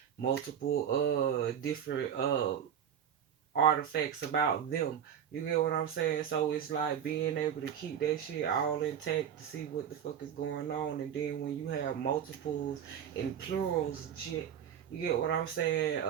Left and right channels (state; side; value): quieter; left; 8.7 dB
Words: multiple different artifacts about them. You get what I'm saying? So it's like being able to keep that shit all intact to see what the fuck is going on. And then when you have multiples and plurals and shit, you get what I'm saying?